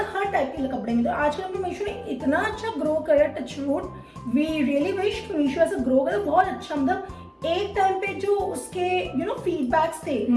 हर टाइप के कपड़े में। तो आजकल हमने मीशो ने इतना अच्छा ग्रो करा, touch wood, we really wish Meesho ऐसे ग्रो करे बहुत अच्छा। मतलब एक टाइम पे जो उसके फीडबैक्स थे,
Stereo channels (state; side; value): identical; both; correlation 1.00